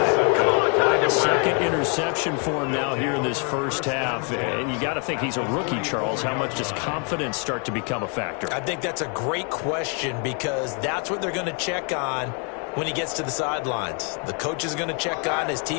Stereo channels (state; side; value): quieter; right; 38.1 dB